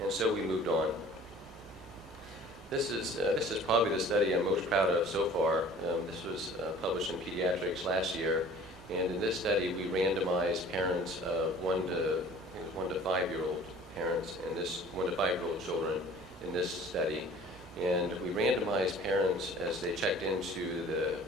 And so we moved on. This is probably the study I'm most proud of so far. This was published in Pediatrics last year, and in this study we randomized parents of 1 to 5-year-old parents and 1 to 5-year-old children in this study. And we randomized parents as they checked into the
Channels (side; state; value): both; normal; correlation 0.48